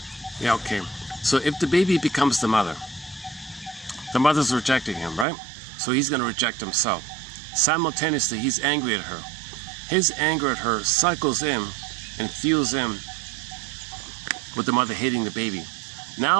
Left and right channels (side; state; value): left; drops out; at 5.2 s